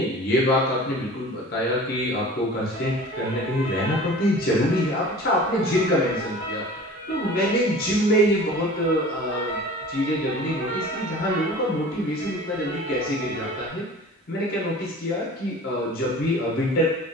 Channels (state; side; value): normal; both; correlation 0.42